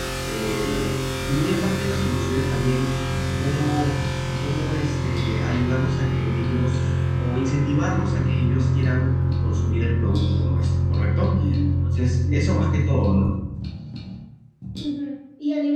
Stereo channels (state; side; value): identical; both; correlation 1.00